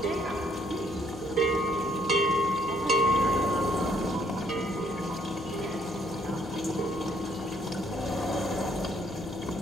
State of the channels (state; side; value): noise; left; hum, 17 dB below the sound